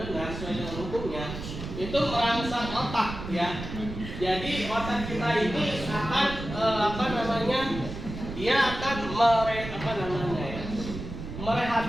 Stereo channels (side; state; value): right; noise; rumble, 8 dB below the sound